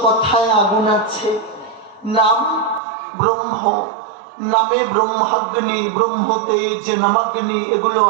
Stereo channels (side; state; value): left; drops out; at 2.8 s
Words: কথায় আগুন আছে। নাম ব্রহ্ম, নামে ব্রহ্মাগ্নি, ব্রহ্মতেজ, নামাগ্নি এগুলো